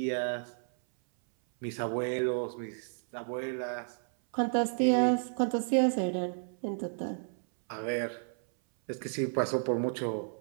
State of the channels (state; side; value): silent; left; 56 dB below the other